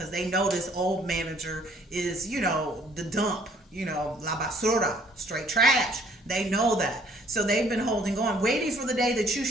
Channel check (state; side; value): normal; both; correlation 0.60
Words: they know this old manager is, the dump, la basura, straight trash. They know that, so they've been holding on, waiting for the day that you